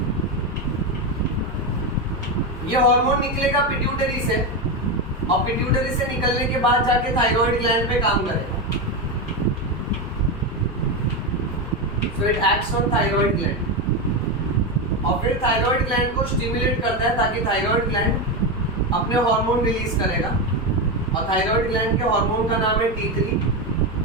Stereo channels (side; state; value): both; normal; correlation 0.13